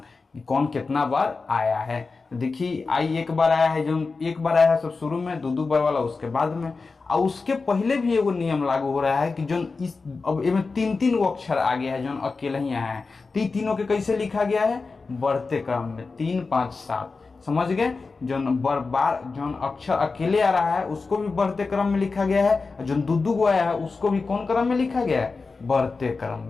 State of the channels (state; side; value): quieter; right; 4.2 dB